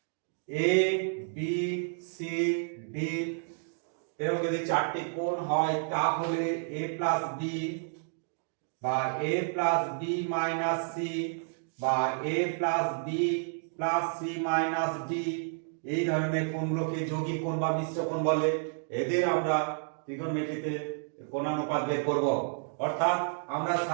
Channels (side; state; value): left; silent; digital silence